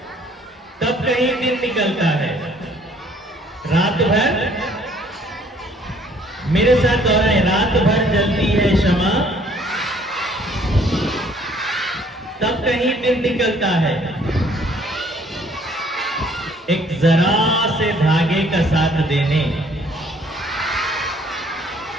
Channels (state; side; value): normal; both; correlation 0.60